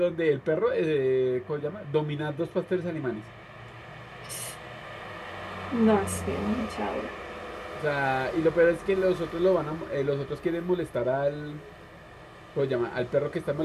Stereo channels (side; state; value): both; identical; correlation 1.00